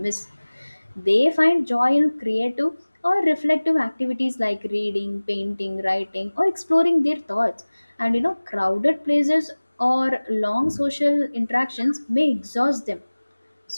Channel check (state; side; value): inverted; both; correlation -1.00